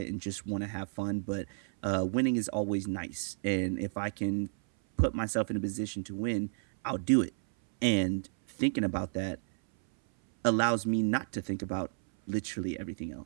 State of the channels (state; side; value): silent; left; 57 dB below the other